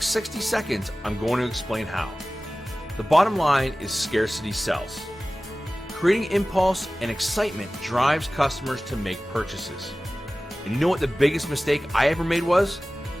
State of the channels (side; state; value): both; normal; correlation 0.97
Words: 60 seconds, I'm going to explain how. The bottom line is scarcity sells. Creating impulse and excitement drives customers to make purchases. And you know what the biggest mistake I ever made was?